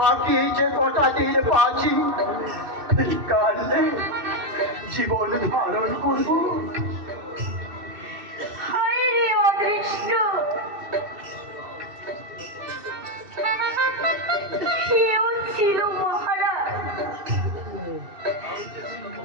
যে কটা দিন বাঁচি, কালে জীবন ধারণ করবো। হায় রে অদৃষ্ট, কেউ ছিল মহারাজ,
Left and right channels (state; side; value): late; left; 2.7 ms